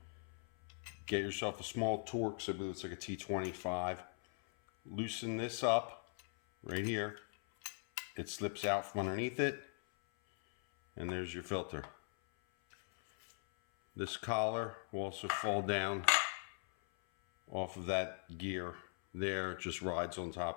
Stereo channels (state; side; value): silent; right; 51 dB below the other